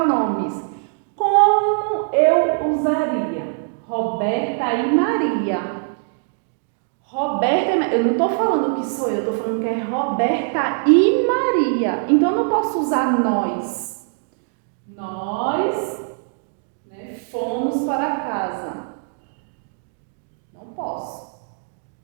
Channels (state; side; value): silent; left; digital silence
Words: como eu usaria? Roberta e Maria. Roberta, eu não estou falando que sou eu, estou falando que é Roberta e Maria. Então, eu não posso usar nós. Nós, né, fomos para casa. Não posso.